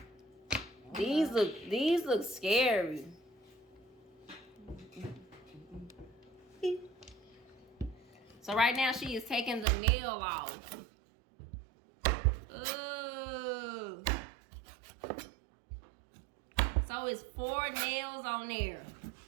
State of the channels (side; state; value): left; drops out; at 9.7 s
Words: these look scary. So right now she is taking the nail off. Ooh. So it's 4 nails on there.